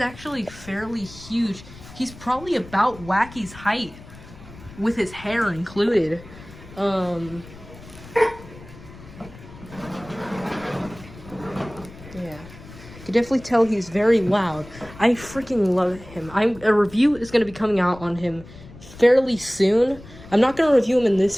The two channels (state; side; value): noise; left; rumble, 18 dB below the sound